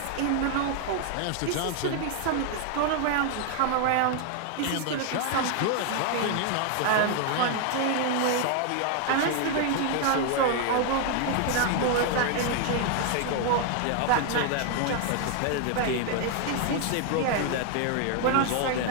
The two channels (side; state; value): both; different; correlation 0.00